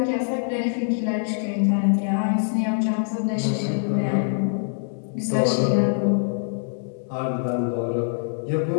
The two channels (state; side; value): silent; right; digital silence